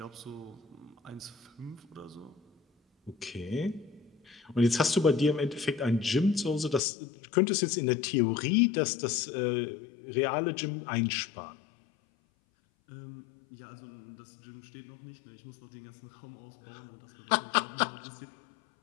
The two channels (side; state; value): right; drops out; at 6.8 s